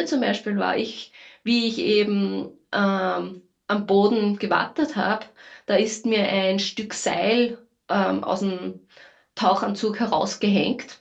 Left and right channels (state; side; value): identical; both; correlation 1.00